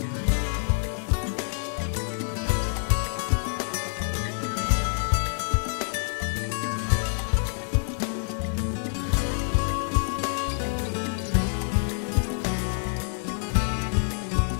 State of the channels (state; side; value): silent; right; digital silence